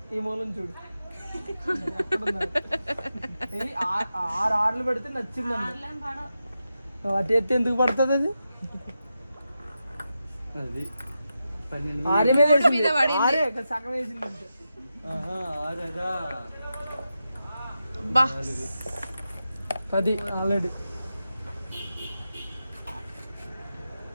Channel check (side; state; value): both; inverted; correlation -0.89